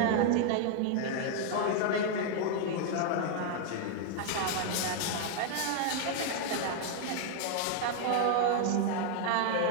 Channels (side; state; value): both; different; correlation 0.00